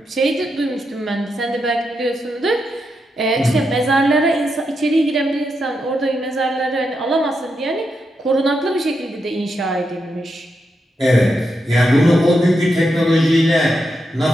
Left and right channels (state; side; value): normal; both; correlation 0.84